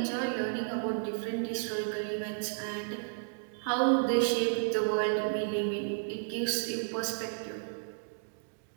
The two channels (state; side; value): silent; left; digital silence